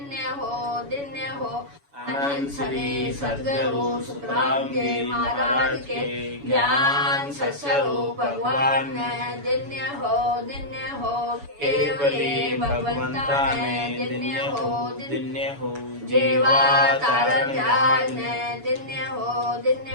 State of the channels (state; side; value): late; left; 7.1 ms